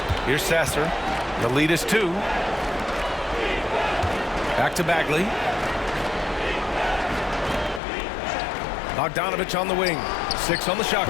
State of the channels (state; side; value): drops out; right; at 7.8 s